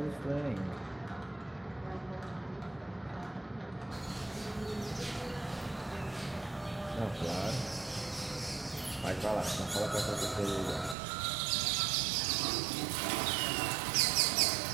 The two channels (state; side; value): drops out; left; at 11.0 s